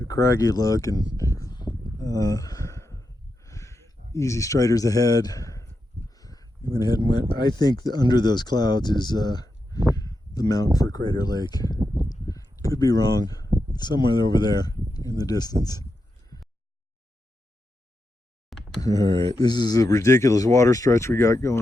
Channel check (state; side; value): normal; both; correlation 0.87